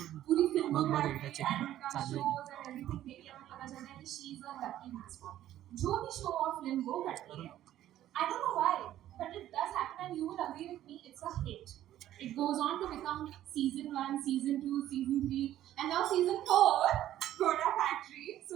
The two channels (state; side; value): quieter; left; 12.8 dB